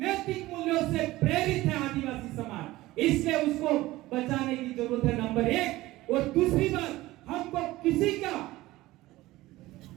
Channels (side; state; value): left; quieter; 17.8 dB